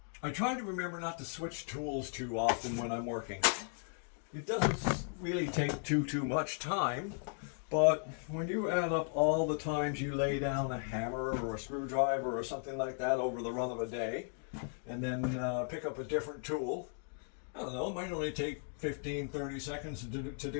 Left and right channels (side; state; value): right; silent; 54 dB below the other